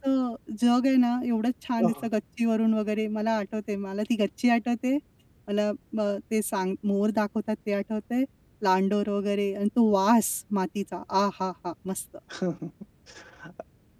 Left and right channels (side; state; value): both; identical; correlation 1.00